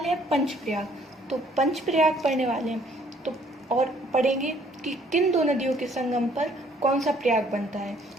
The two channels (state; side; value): normal; both; correlation 0.62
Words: हैं पंचप्रयाग। तो पंचप्रयाग पढ़ने वाले हैं तो और पढ़ेंगे कि किन दो नदियों के संगम पर कौन सा प्रयाग बनता है